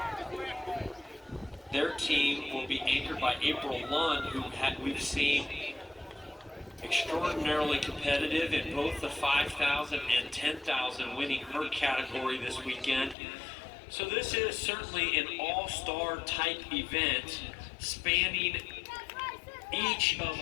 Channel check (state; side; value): drops out; right; at 13.2 s